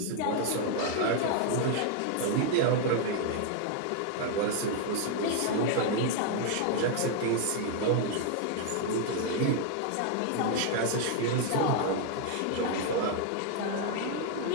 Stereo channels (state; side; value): different; both; correlation 0.00